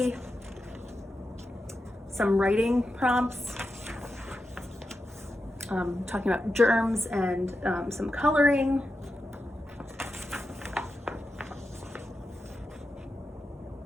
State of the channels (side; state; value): both; normal; correlation 0.89